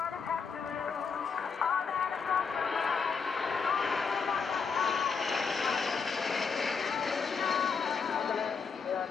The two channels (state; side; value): quieter; right; 5.6 dB